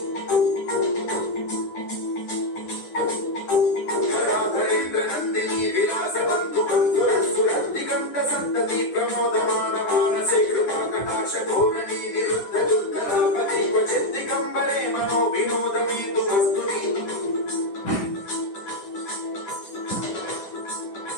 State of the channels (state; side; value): late; right; 10 ms